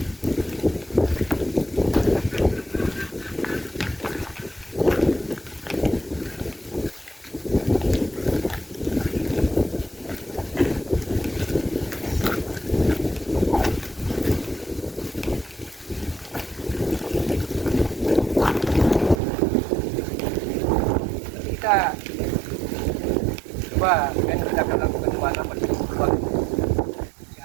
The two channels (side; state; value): left; drops out; at 19.2 s